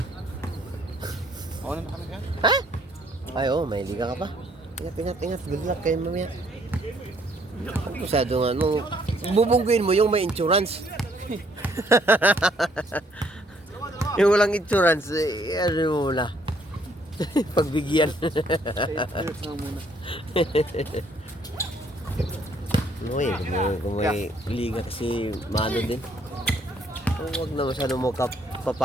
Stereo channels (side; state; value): both; normal; correlation 0.66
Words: Ako na kami ka? Ha? Ay, oh, may liga ka pa. Ingat. Good luck kayo mamaya. Masyadong ano, bubungguin mo yung may insurance. Yung walang insurance, ano mo na. Pagbigyan. muna. Kung may liga kasi mano din. Huwag na masyadong mo